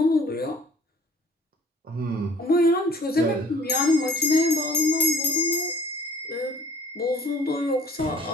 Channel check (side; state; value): both; normal; correlation 0.54